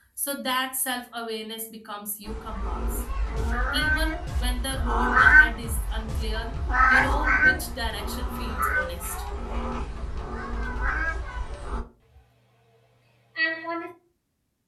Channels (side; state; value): both; identical; correlation 1.00